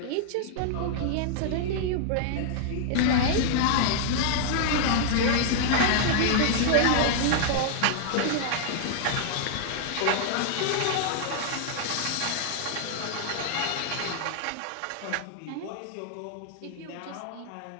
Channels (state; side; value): different; both; correlation -0.01